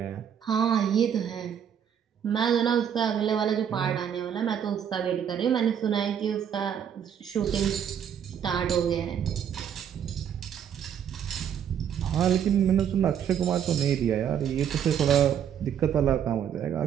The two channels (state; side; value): quieter; left; 8.7 dB